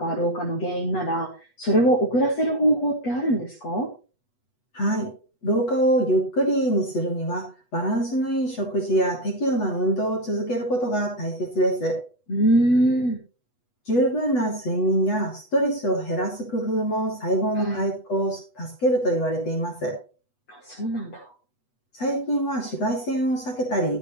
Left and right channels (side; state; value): right; late; 8.2 ms